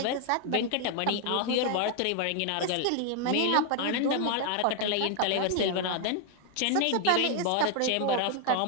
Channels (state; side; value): different; both; correlation 0.00